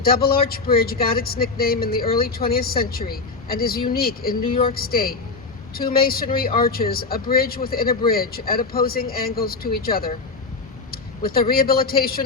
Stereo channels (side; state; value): right; quieter; 4.1 dB